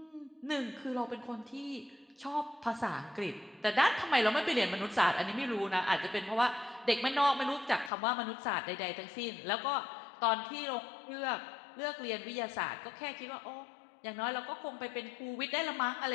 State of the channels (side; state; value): right; drops out; at 7.9 s